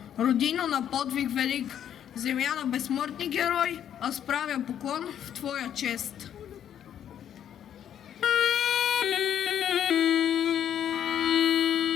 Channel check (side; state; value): right; quieter; 9.8 dB